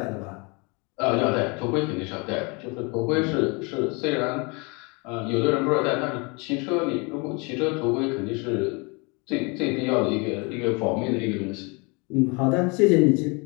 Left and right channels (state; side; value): quieter; right; 30.2 dB